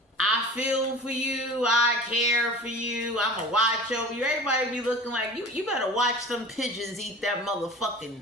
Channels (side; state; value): both; normal; correlation 0.38